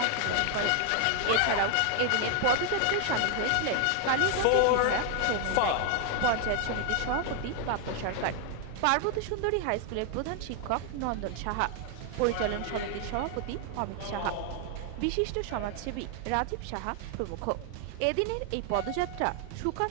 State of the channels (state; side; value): different; both; correlation 0.00